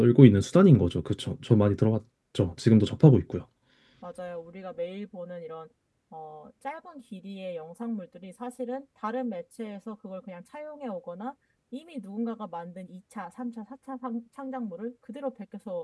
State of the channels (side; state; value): both; identical; correlation 1.00